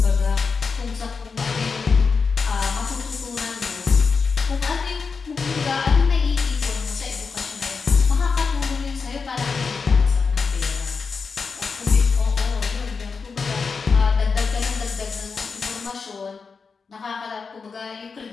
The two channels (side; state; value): right; quieter; 5.1 dB